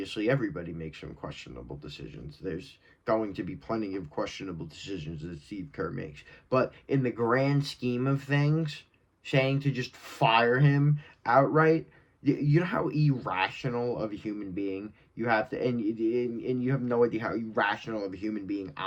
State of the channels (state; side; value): identical; both; correlation 1.00